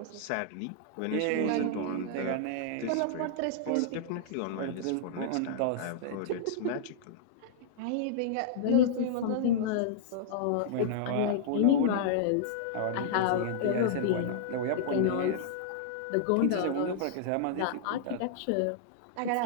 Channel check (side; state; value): both; different; correlation -0.01